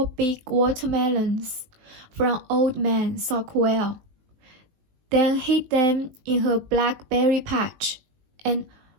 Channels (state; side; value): late; left; 19 ms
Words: big watermelons from Old Man Sockwell, then hid them in her blackberry patch, and